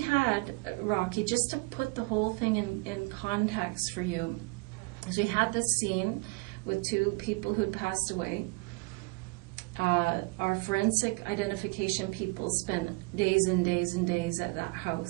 Rocky, just to put the whole thing in context for you, is we had this scene with two people who'd passed away. Our forensic identification people spent days and days and days at that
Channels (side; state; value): left; quieter; 27.2 dB